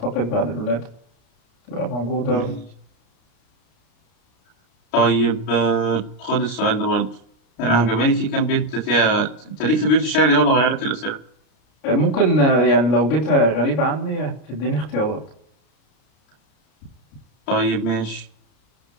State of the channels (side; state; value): right; late; 33 ms